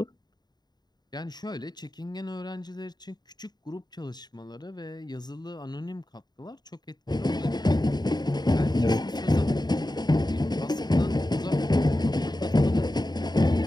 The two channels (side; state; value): right; late; 0.20 ms